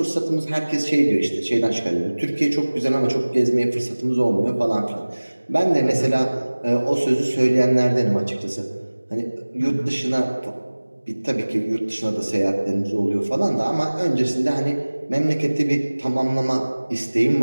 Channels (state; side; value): inverted; both; correlation -1.00